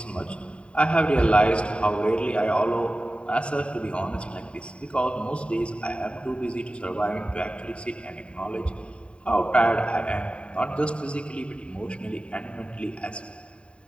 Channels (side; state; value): right; late; 0.058 ms